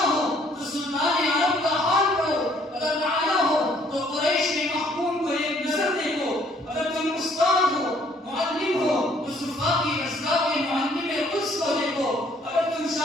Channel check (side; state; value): both; normal; correlation 0.63